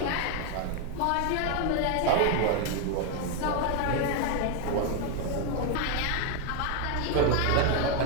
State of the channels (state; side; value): different; both; correlation 0.01